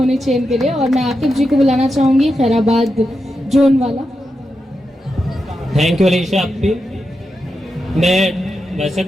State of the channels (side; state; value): both; normal; correlation 0.87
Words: चाहिए इनके लिए। और मैं आकिब जी को बुलाना चाहूंगी, खैराबाद जोन वाला। थैंक यू अलीशा आपकी। मैं वैसे